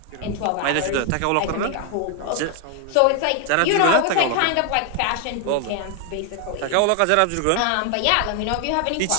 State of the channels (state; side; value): different; both; correlation 0.00